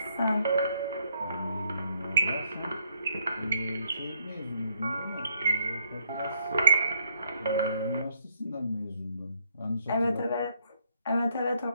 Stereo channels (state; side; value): inverted; both; correlation -0.71